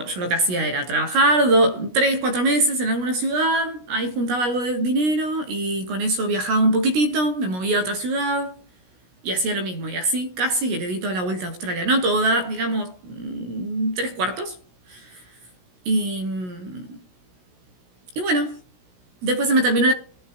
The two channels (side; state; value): left; late; 16 ms